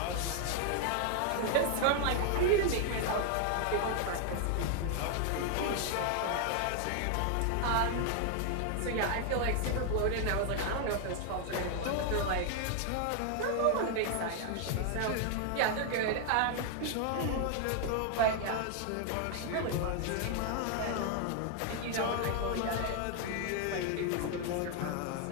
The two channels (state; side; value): different; both; correlation 0.00